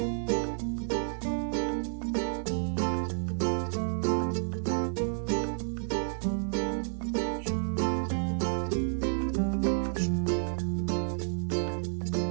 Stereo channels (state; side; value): silent; left; digital silence